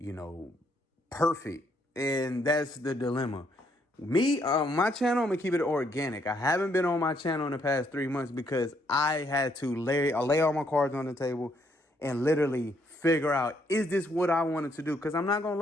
know, perfect. And that's the dilemma. Me, my channel, I'm gonna keep it organic. I haven't been on my channel in the past 3 months because I had to lay all my cards on the table and literally figure out, is this what I wanted to do? Because I'm not gonna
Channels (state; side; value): normal; both; correlation 0.71